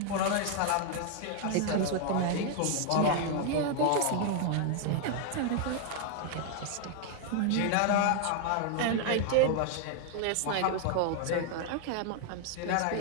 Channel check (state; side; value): different; both; correlation 0.00